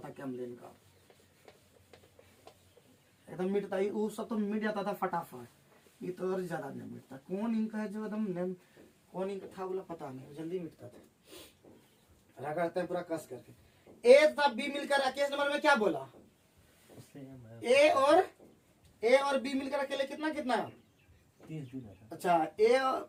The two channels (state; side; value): identical; both; correlation 1.00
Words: है कैमलिन का, एकदम मिटता है। वो सब तो मिट जाता था फटाफट, ये तो और ज्यादा नहीं मिटता। कौन इंक है जो एकदम, कौन इंक था बोला पता नहीं, जल्दी मिटता था। रगड़ते हैं पूरा कस करके। ए तथा बी मिलकर केस नंबर में क्या बोला? ए और बी मिलकर अकेले कितना कितना? 30 दिन है। अच्छा, ए